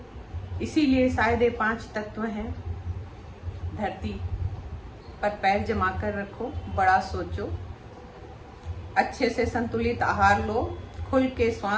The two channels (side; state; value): both; identical; correlation 1.00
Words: इसीलिए शायद ये 5 तत्व हैं। धरती पर पैर जमा कर रखो, बड़ा सोचो, अच्छे से संतुलित आहार लो, खुल के